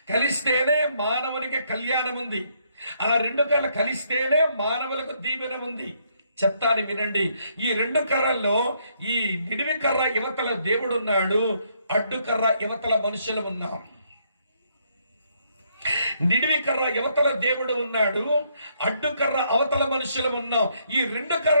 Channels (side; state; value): both; inverted; correlation -0.71